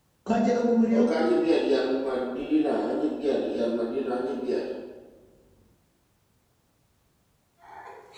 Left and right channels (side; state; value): both; identical; correlation 1.00